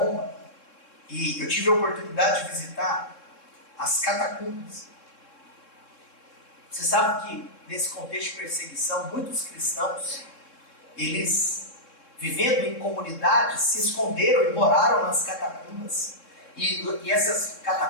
e eu tive a oportunidade de visitar as catacumbas. Você sabe que nesse contexto de perseguição, muitos cristãos, eles, vivendo em comunidades, se esconderam e moraram nas catacumbas. E essas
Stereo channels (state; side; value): late; right; 3.7 ms